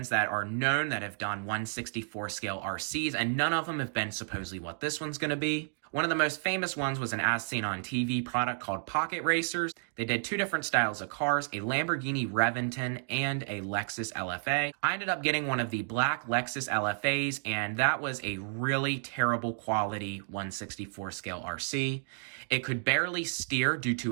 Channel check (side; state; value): left; silent; digital silence